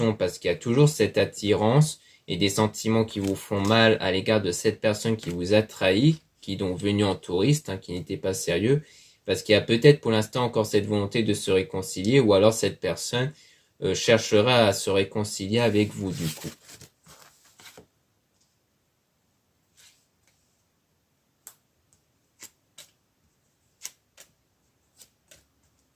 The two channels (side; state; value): both; identical; correlation 1.00